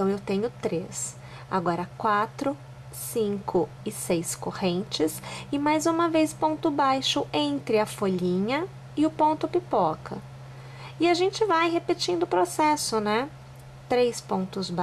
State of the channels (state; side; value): identical; both; correlation 1.00